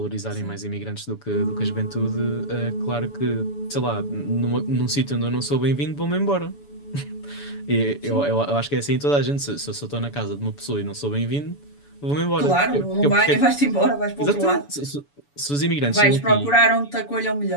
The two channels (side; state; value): right; late; 7.0 ms